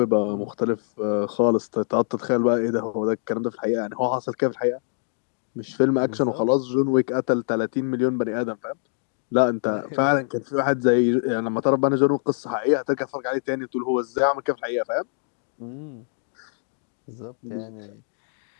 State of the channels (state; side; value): silent; right; 62 dB below the other